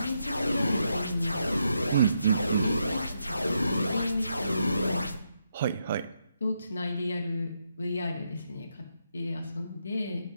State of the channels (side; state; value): both; inverted; correlation -0.81